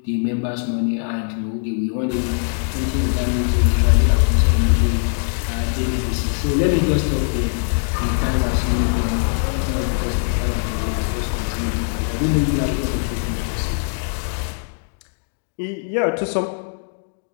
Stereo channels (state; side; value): silent; right; 65 dB below the other